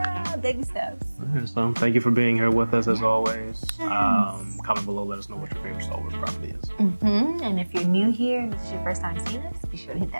Baby steps. Alright, so thank you for being here with us as always. Comment below, let us know what your favorite Star Wars property is. And if you're new here and this is your first time seeing us, be sure to hit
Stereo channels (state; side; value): inverted; both; correlation -1.00